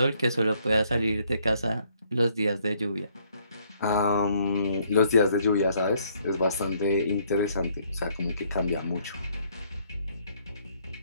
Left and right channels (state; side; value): inverted; both; correlation -0.67